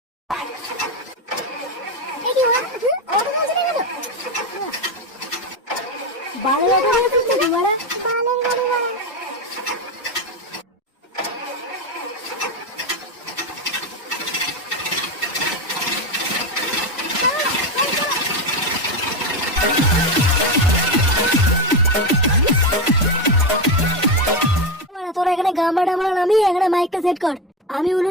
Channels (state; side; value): normal; both; correlation 0.14